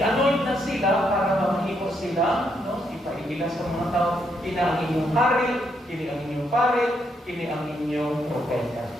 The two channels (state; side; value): normal; both; correlation 0.76